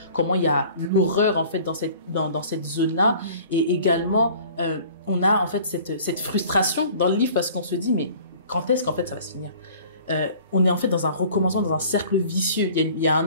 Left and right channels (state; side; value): inverted; both; correlation -0.49